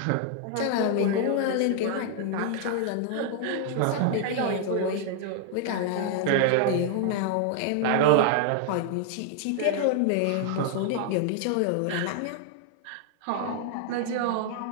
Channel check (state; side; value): different; both; correlation 0.00